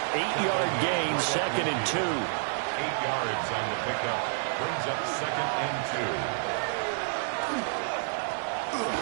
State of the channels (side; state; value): left; silent; digital silence